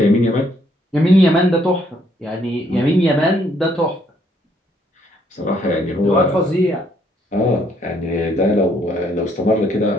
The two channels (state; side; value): normal; both; correlation 0.68